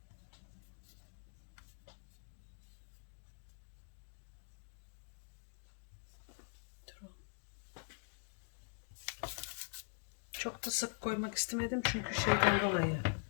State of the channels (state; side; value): silent; right; digital silence